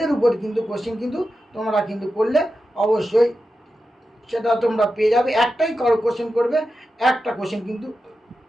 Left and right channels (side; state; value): both; normal; correlation 0.91